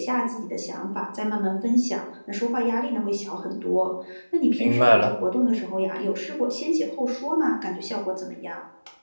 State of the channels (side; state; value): both; inverted; correlation -1.00